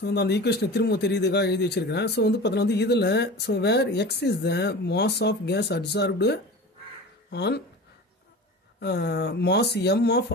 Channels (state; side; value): normal; both; correlation 0.34